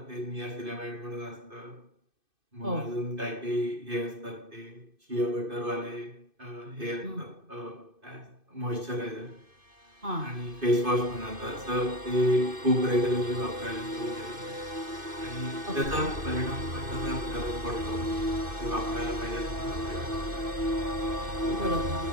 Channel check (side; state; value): left; late; 2.6 ms